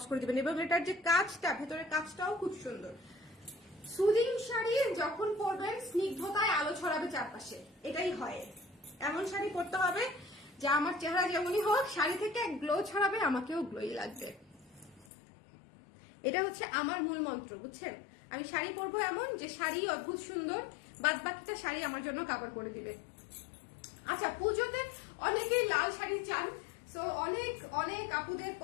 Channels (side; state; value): right; drops out; at 15.1 s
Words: করে দিবেন। এবং এটার যে কাজটা, ভেতরের কাজটাও খুব সুন্দর। সুদিং শাড়ি যখন পরবেন স্নিগ্ধতায় আলো ছড়াবে চারপাশে, এটাই হয়। এমন শাড়ি পরতে হবে যা আমার চেহারা যেমনই হোক, শাড়ি থেকে গ্লো ছড়াবে, আমাকেও গ্লোই লাগবে। এটা হচ্ছে আমার মূল মন্ত্র, বুঝছেন? আমি শাড়ি পরবো এমন যে শাড়ি অদ্ভুত সুন্দর, বাদ বাকিটা শাড়ি আমার জন্য কাভার করে দিবে। আচ্ছা, পুজোতে অনেকেই লাল শাড়ি চান, সো অনেক অনেক আপুদের